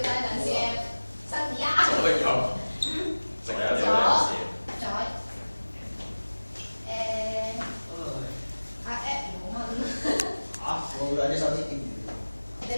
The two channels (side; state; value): both; inverted; correlation -1.00